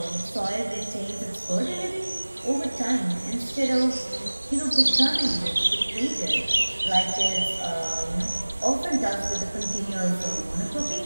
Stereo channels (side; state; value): both; inverted; correlation -1.00